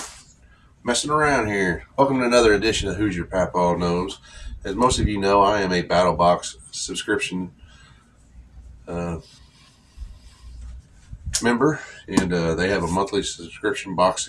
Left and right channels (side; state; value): both; identical; correlation 1.00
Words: messing around here. Welcome to another edition of Who's Your Papa Knows. As most of you know, I am a Battlbox subscription member, and they have a monthly subscription box